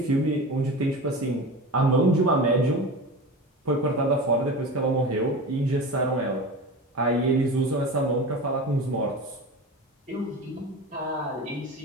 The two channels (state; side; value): normal; both; correlation 0.30